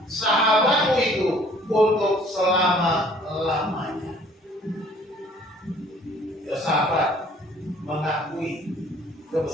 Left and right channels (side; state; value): both; normal; correlation 0.56